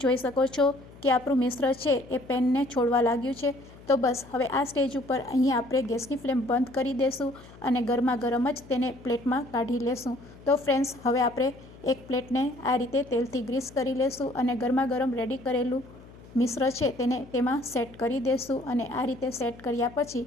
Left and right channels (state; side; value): noise; left; hum, 20 dB below the sound